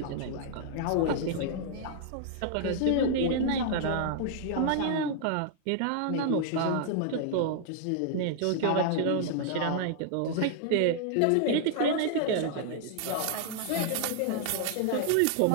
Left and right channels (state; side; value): different; both; correlation -0.01